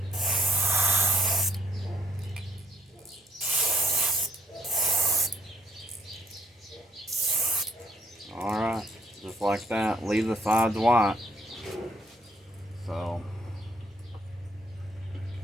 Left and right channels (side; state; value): both; normal; correlation 0.66